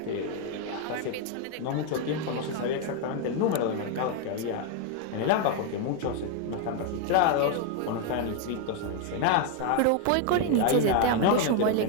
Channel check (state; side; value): different; both; correlation 0.01